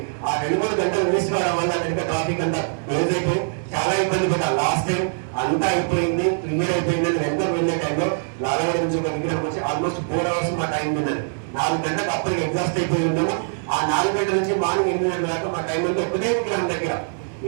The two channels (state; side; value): silent; left; 58 dB below the other